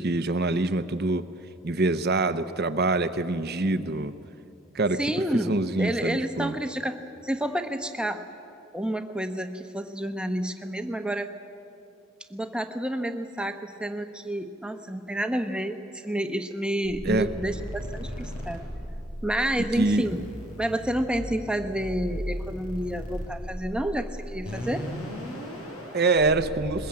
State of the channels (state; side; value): normal; both; correlation 0.58